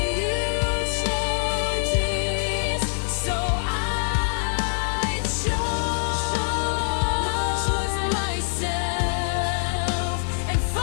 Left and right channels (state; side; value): silent; right; digital silence